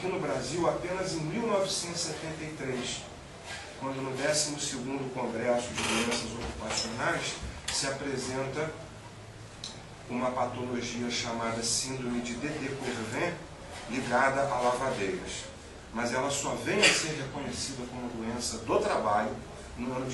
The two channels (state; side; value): identical; both; correlation 1.00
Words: no Brasil, apenas em 1973, quando no 12º Congresso de Doenças Ocupacionais se apresenta uma patologia chamada síndrome de Dédé-Quervain ligada a lavadeiras. Mas ela só vem a ser reconhecida como doença do trabalho no ano